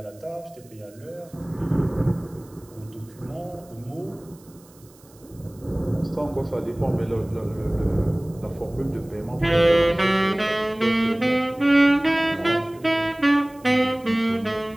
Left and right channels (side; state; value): right; noise; hiss, 27 dB below the sound